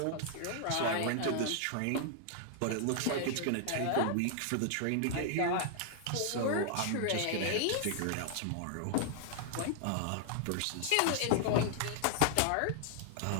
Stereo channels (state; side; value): different; both; correlation 0.00